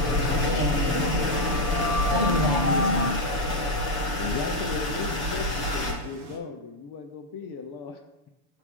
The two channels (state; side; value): late; left; 6.9 ms